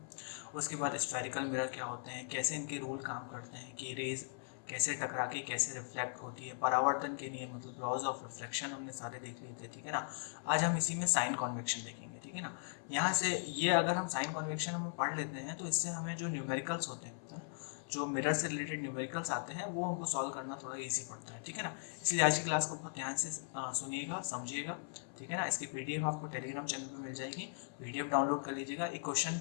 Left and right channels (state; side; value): silent; right; 52 dB below the other